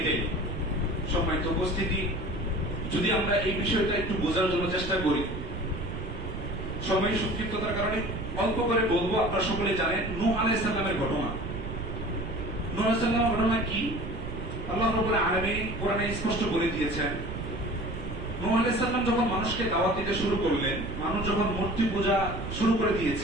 সম্মানিত উপস্থিতি, যদি আমরা এই বিষয়টা একটু বোঝার জন্য চেষ্টা করি, সময় সংক্ষিপ্ততার কারণে অল্প করে বলবো। আপনারা সকলে জানেন নূহ আলাইহিস সালামের ঘটনা। নূহ আলাইহিস সালামের ঘটনা কি আল্লাহ রাব্বুল আলামিন কোরআনে স্পষ্ট বলে দিয়েছেন। নূহ আলাইহিস সালাম যখন মানুষকে দাওয়াত দিতে শুরু করলেন, মানুষ যখন মূর্তি পূজা শুরু করে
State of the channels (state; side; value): noise; right; rumble, 7 dB below the sound